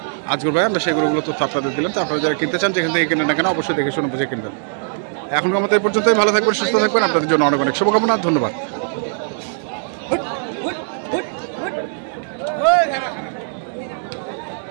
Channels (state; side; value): silent; left; digital silence